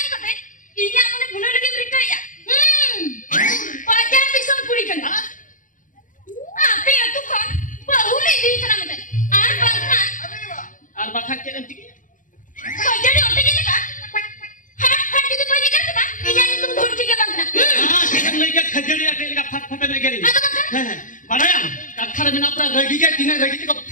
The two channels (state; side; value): late; right; 0.38 ms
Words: kate, ini amane bunuh lagi mereka ya. Pajar bisa puri kan? Apa ya tuh kan? Bahulai di sana meten. Bangkan. Ar bakhan cek nanti. Pajar ni otak ini kan? Hat itu pajar kan tu kan? Ini itu dur tiga bangkan. Cek lagi khajari ate lagi fat fat lagi ni. Atau bangkan? Padahal kathar mina pra ragi ge tina ragi ko